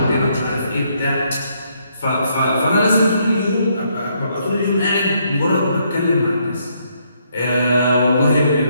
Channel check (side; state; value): both; inverted; correlation -0.73